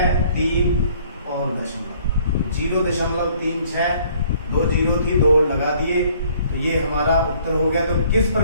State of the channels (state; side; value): inverted; both; correlation -0.59